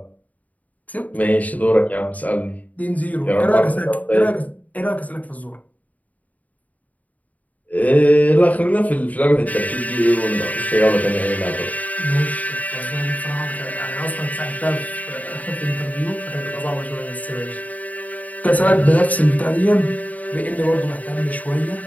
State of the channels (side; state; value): right; late; 0.073 ms